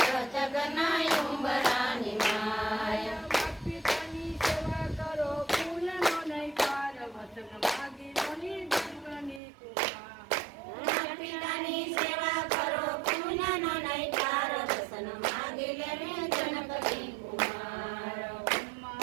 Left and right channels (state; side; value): drops out; left; at 9.4 s